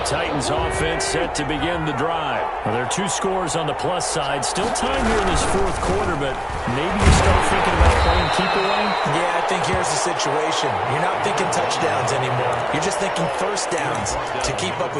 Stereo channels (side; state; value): both; identical; correlation 1.00